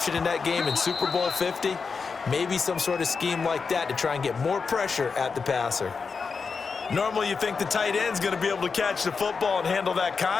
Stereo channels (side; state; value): right; quieter; 5.1 dB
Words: in that game in Super Bowl 50. Maybe some sort of scheme like that to try and get more pressure at the passer. Normally you think the tight end's going to be able to catch the football and handle that